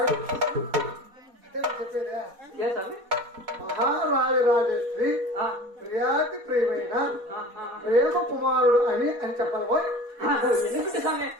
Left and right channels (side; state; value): left; late; 4.2 ms